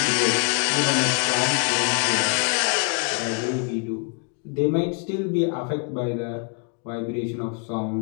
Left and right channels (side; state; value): right; quieter; 35.7 dB